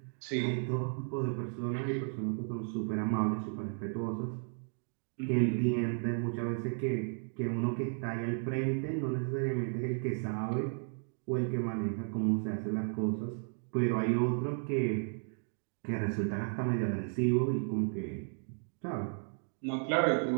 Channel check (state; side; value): silent; left; 55 dB below the other